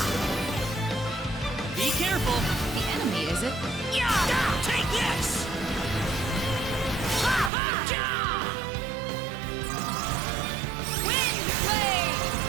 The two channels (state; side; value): drops out; left; at 7.5 s